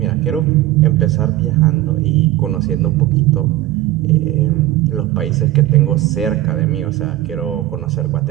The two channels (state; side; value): quieter; left; 15.1 dB